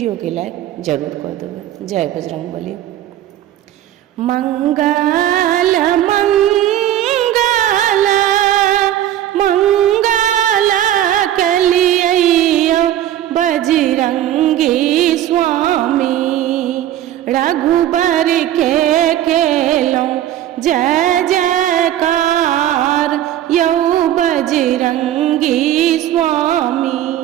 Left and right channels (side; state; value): left; quieter; 12.2 dB